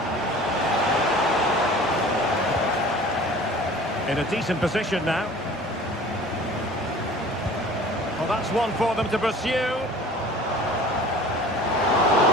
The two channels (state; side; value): normal; both; correlation 0.45